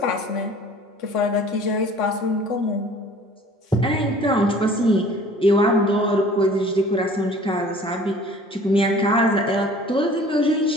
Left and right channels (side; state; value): both; normal; correlation 0.49